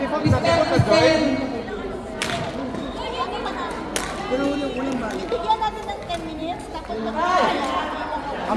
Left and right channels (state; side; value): identical; both; correlation 1.00